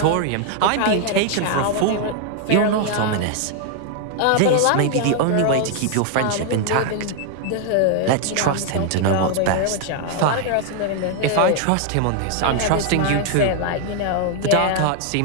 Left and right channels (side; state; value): both; different; correlation 0.00